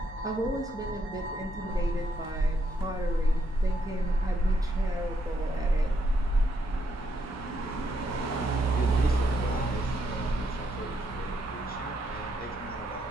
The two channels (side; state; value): both; normal; correlation 0.76